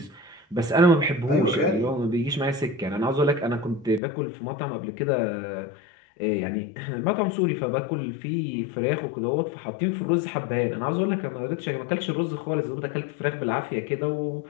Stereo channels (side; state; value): right; drops out; at 4.0 s